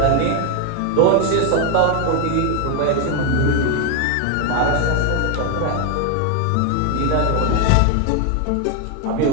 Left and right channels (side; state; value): both; different; correlation 0.01